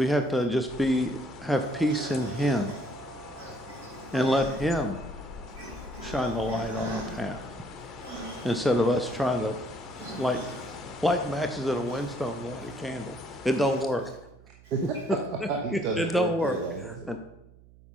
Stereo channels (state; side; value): noise; right; hum, 23 dB below the sound